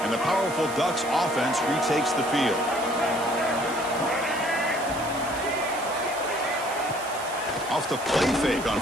And the powerful Ducks offense retakes the field. Off the play fake on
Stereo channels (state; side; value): noise; right; hiss, 13 dB below the sound